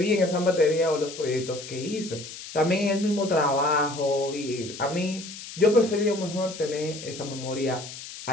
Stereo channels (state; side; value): noise; left; hiss, 12 dB below the sound